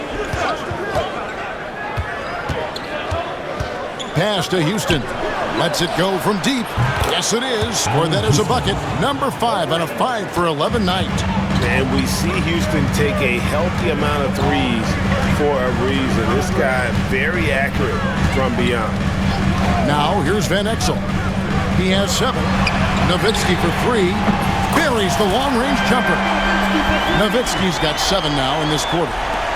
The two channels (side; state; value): both; identical; correlation 1.00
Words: Pass to Houston. Lets it go from deep. Yes, it is. Scored that as a bucket. Number 5 on a 5 for 11 night. And we see Houston take a healthy amount of threes for a reason. This guy very accurate from beyond. Now here's Van Exel. He has 7. Nowitzki for 3. Buries the long-range jumper. Nowitzki's got 7 now in this quarter.